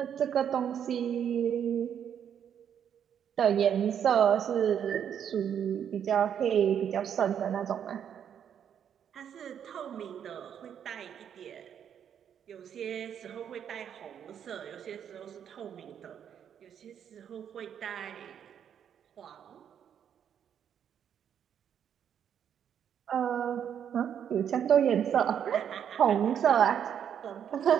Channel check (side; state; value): left; quieter; 8.7 dB